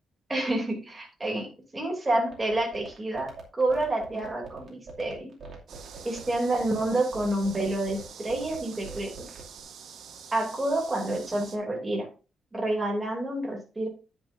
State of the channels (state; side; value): normal; both; correlation 0.86